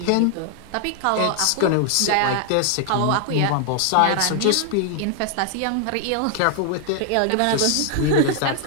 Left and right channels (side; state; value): both; different; correlation 0.00